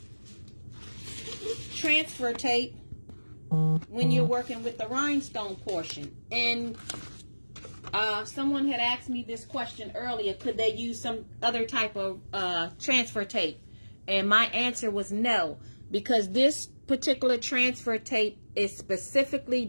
transfer tape when you're working with the rhinestone portion. And someone had asked me this question earlier: could they use some other type of transfer tape? And my answer was no, because this particular transfer tape is specifically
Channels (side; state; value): both; inverted; correlation -1.00